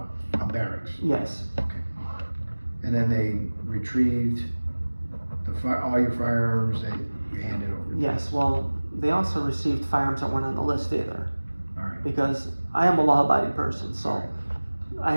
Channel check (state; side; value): inverted; both; correlation -1.00